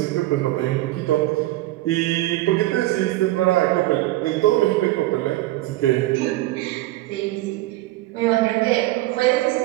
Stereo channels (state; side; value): quieter; left; 17.4 dB